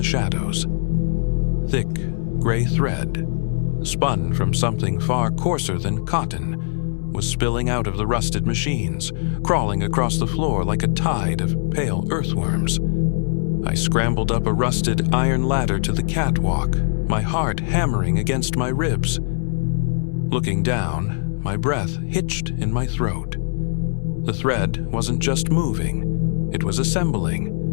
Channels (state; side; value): silent; right; 65 dB below the other